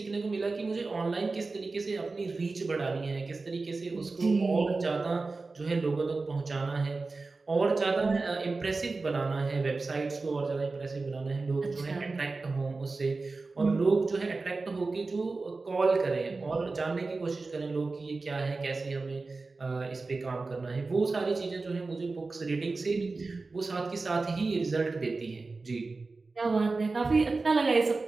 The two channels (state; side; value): quieter; left; 3.7 dB